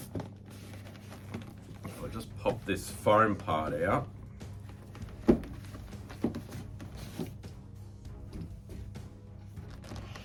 If I just pop this foam part out.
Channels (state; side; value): identical; both; correlation 1.00